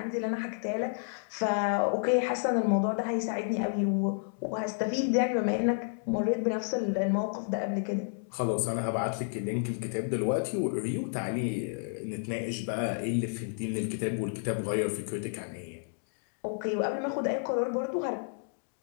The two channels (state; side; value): silent; right; digital silence